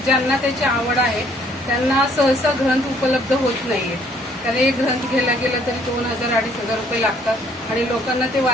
ज्यांना त्याची आवड आहे त्यांना सहसा ग्रंथ उपलब्ध होत नाहीये। कारण एक ग्रंथ घ्यायला गेलं तरी 2000-2500 रुपये लागतात आणि लोकांना ते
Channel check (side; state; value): both; normal; correlation 0.63